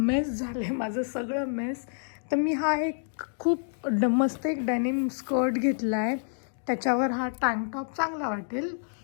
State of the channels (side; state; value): right; silent; digital silence